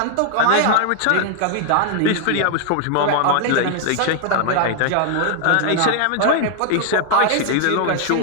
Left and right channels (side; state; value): both; different; correlation 0.00